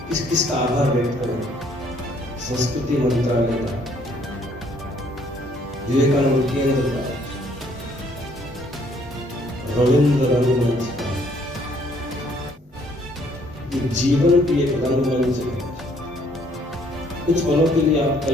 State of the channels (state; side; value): normal; both; correlation 0.64